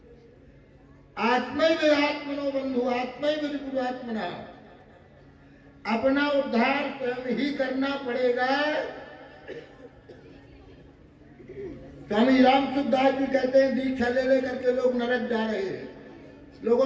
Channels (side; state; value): both; identical; correlation 1.00